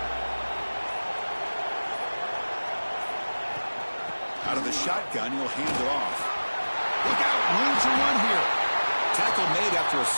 Out of the shotgun, he'll hand it off. Look out, room to run here. Tackle made after a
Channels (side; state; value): both; inverted; correlation -1.00